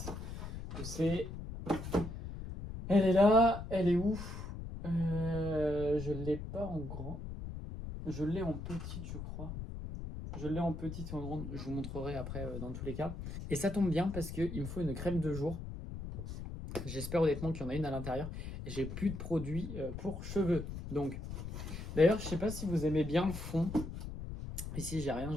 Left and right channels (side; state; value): left; noise; rumble, 7 dB below the sound